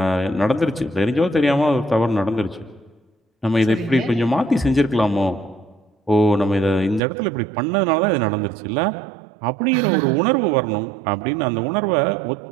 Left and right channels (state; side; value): drops out; left; at 7.0 s